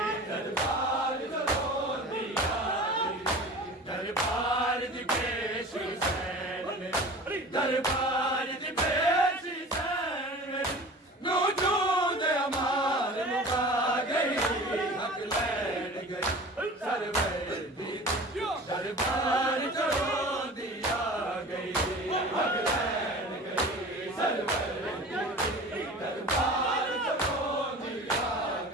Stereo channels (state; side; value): normal; both; correlation 0.39